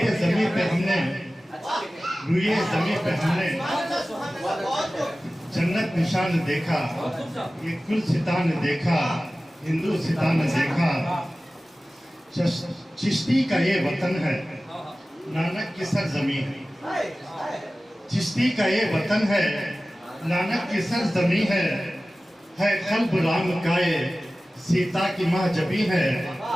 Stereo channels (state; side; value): normal; both; correlation 0.96